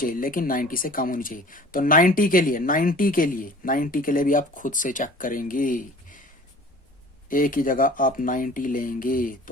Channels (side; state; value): both; normal; correlation 0.45